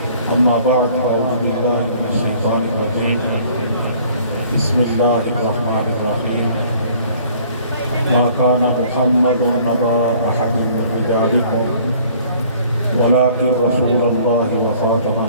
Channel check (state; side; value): inverted; both; correlation -0.55